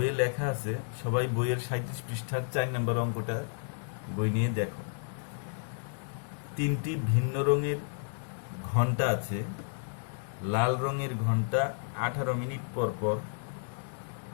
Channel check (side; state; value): right; silent; 57 dB below the other